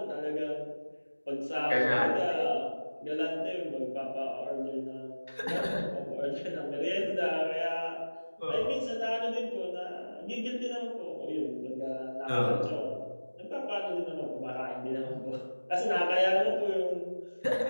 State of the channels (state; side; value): inverted; both; correlation -1.00